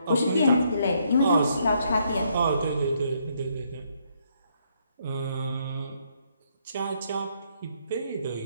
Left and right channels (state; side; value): inverted; both; correlation -0.72